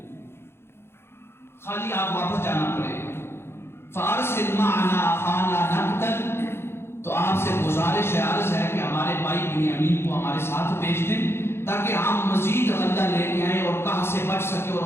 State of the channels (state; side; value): late; right; 0.12 ms